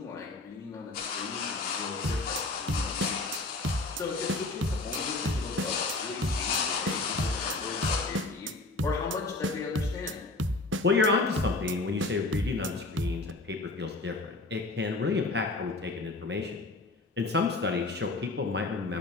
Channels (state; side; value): quieter; right; 3.2 dB